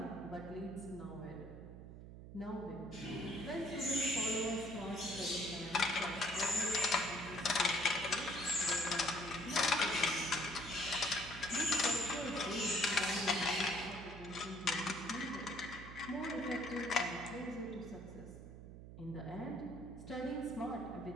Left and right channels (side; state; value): right; noise; hum, 13 dB below the sound